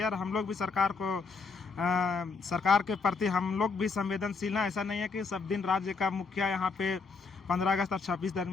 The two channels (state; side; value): quieter; right; 4.6 dB